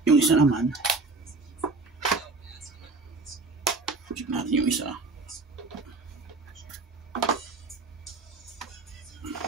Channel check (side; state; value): left; quieter; 3.8 dB